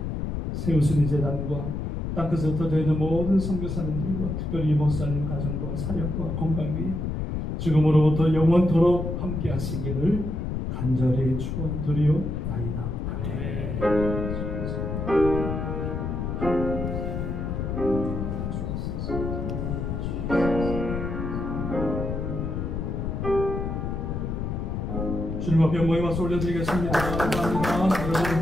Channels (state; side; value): noise; left; rumble, 3 dB below the sound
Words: 세우신 이 제단과 땅끝에 흩어져 있는 모든 선교사님들과 특별히 목사님 가정과 사역과 건강 위에 지금으로부터 영원토록 함께 하시기를 간절히 축원드리옵나이다. 아멘. 주님 앞에 모임 와서 올려드리겠습니다. 감사합니다.